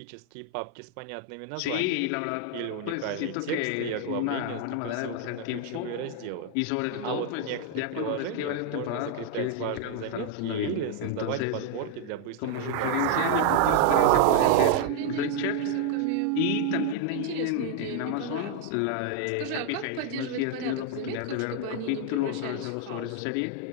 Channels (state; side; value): different; both; correlation 0.00